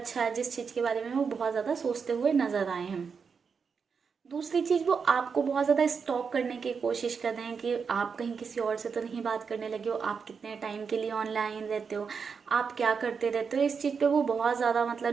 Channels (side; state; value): left; quieter; 5.8 dB